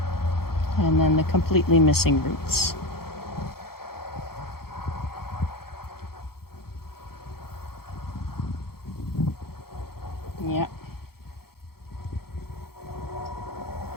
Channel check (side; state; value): right; late; 0.94 ms